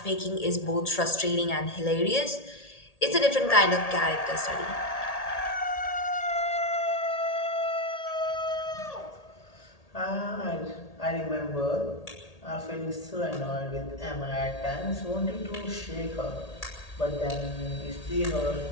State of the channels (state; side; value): late; right; 1.8 ms